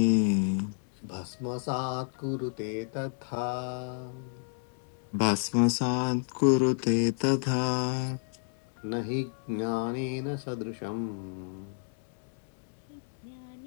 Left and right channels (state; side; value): silent; right; digital silence